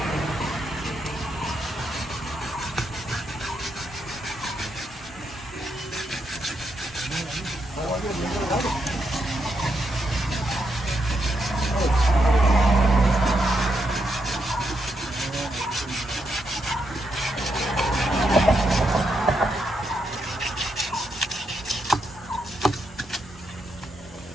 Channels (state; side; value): normal; both; correlation 0.81